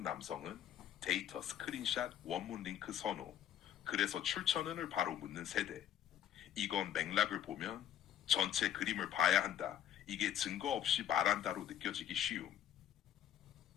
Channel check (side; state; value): right; quieter; 10.6 dB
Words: 남성은 데이터, 스크린샷, 원문 링크 선호. 그래서 출처는을 바로 묻는 세대. 이건 맥락을 보면 전체 그림을 봐야 한다. 이게 증거 없이 말한다로 느껴지기 쉬움.